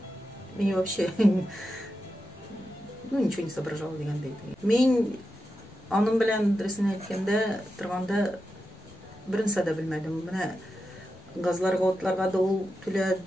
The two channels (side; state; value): both; normal; correlation 0.89